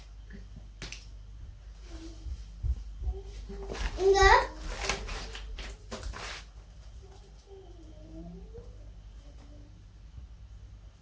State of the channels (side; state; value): both; identical; correlation 1.00